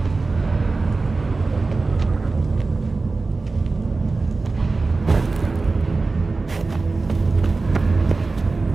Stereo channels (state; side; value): quieter; left; 3.7 dB